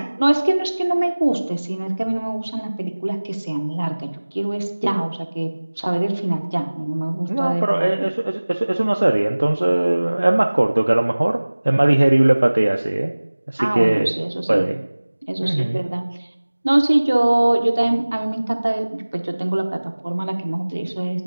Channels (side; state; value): both; inverted; correlation -1.00